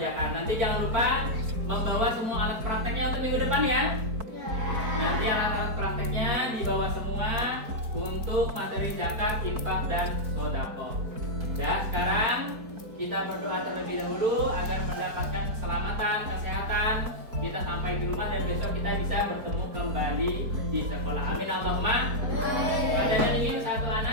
Nanti jangan lupa membawa semua alat prakteknya untuk minggu depan ya. Nanti alat-alat prakteknya dibawa semua untuk materi zakat, infak, dan sedekah. Dan sekarang kita berdoa terlebih dahulu agar mendapatkan keselamatan, kesehatan. Kita sampai di rumah dan besok kita bisa bertemu kembali di sekolah. Amin Allahumma. Padahal ingin satu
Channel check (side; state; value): left; late; 4.5 ms